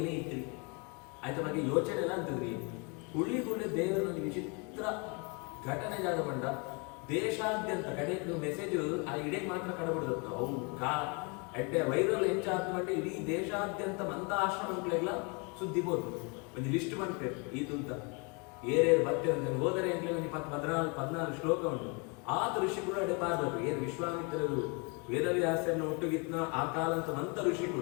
ಇದ್ರಿ ಆಯ್ತ ಬಗ್ಗೆ ಯೋಚನೆ ಎಲ್ಲ ಅಂತದ್ರಿ ಹುಳ್ಳಿ ದೇವರೊಂದು ವಿಚಿತ್ರ ಘಟನೆ ಜಾಗ ಬಂಡ ದೇಶಾದ್ಯಂತ ಕಡೆ ಮೆಸೇಜ್ ಆ ಇಡೇ ಮಾತ್ರ ಕಡಬಿಡ್ದು ಅವು ಎಡ್ಡೆ ವೈರಲ್ ಹೆಂಚಾತ್ಮಂటే ಇಡೀ ದೇಶಾದ್ಯಂತ ಮಂತ ಆಶ್ರಮಗಳೆಲ್ಲ ಸುದ್ದಿ ಬೋದು ಒಂದು ಲಿಸ್ಟ್ ಮಾಡ್ತೇವೆ ಇದು ಅಂತ ಏರೇರು ಬರ್ತೇವೆ ಅಂತ ಹೋದರೆ ಅಂತ ಒಂದು 14 ಶ್ಲೋಕ ಉಂಟು ಆತ ಋಷಿಗಳು ಅಡೆ ಪಾರ್ಬೇಕು ಏನು ವಿಶ್ವಾಮಿತ್ರರು ವೇದವ್ಯಾಸರನ್ನ ಒಟ್ಟುಗಿತ್ನ ಆ ಕಾಲ ಅಂತ ಮಂತ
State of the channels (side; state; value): right; quieter; 32.5 dB